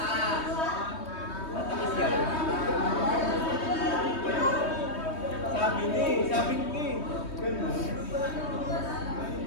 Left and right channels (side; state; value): right; late; 3.2 ms